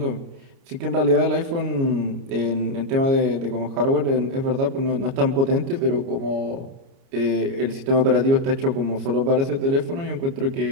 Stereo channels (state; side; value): late; left; 29 ms